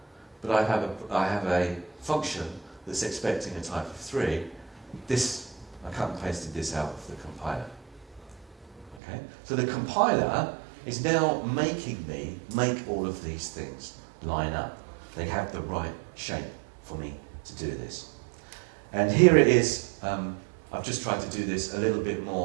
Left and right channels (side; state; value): left; drops out; at 9.0 s